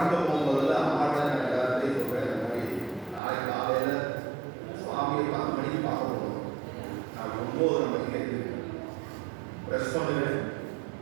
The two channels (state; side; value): drops out; left; at 3.2 s